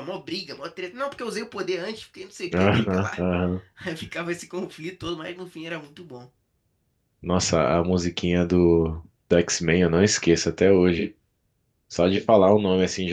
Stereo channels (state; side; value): identical; both; correlation 1.00